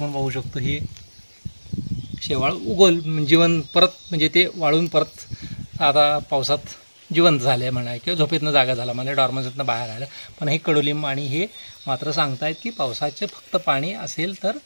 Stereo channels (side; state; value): both; inverted; correlation -1.00